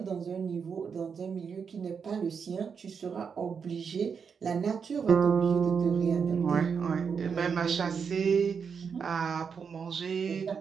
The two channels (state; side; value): quieter; left; 6.3 dB